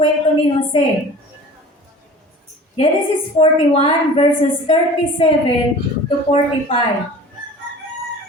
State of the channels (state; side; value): normal; both; correlation 0.41